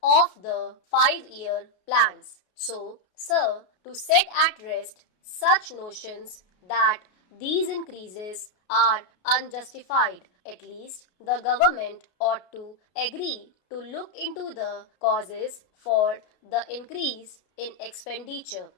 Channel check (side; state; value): right; late; 33 ms